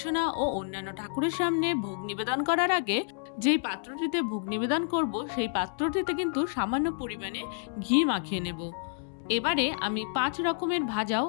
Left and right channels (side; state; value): right; silent; 58 dB below the other